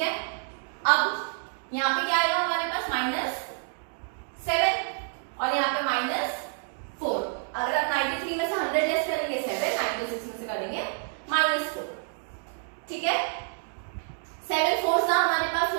है, अब यहाँ पे क्या आएगा हमारे पास -7 और यहाँ पे -4। अगर आप 93 में से 100 लेस करेंगे 7, 96 में से करेंगे -4। ठीक है, 7 4 हमारे पास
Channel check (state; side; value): silent; left; 59 dB below the other